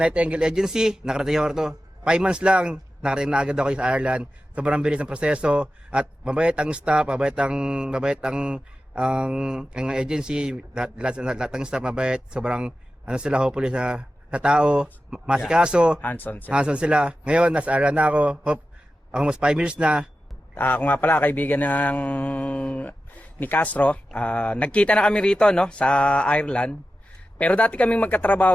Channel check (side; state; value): both; normal; correlation 0.93